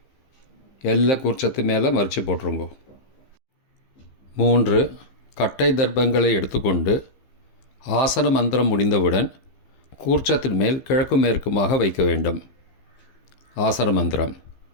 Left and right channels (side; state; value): right; late; 15 ms